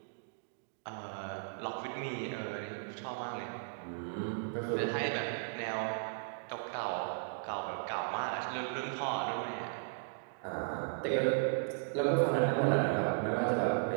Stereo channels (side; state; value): left; silent; digital silence